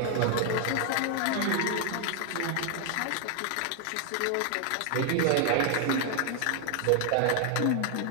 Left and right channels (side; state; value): both; different; correlation 0.00